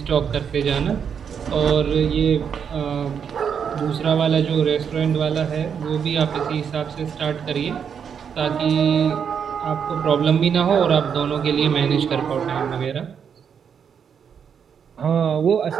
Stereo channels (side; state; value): left; quieter; 7.3 dB